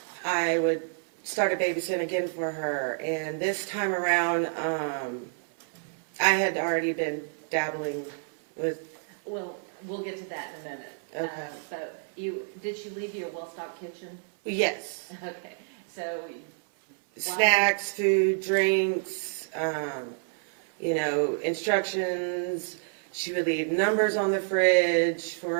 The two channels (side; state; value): left; silent; 59 dB below the other